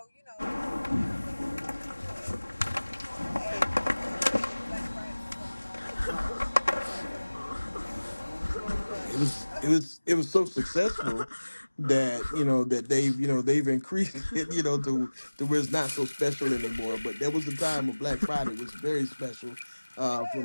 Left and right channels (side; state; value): both; inverted; correlation -1.00